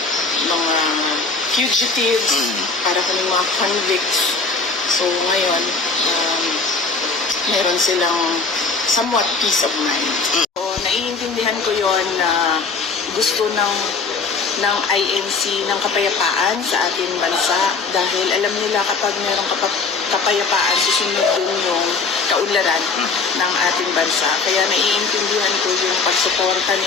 fugitives, para kaming mga convicts. So ngayon, meron silang somewhat peace of mind. So, naiintindihan ko yon na gusto ng INC ng kapayapaan sa ating bansa, dahil alam nila kapag merong kapayapaan, susunod dun yung kaunlaran ng ating bansa. Kaya naiintindihan ko yung pagsuporta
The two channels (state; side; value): quieter; right; 4.4 dB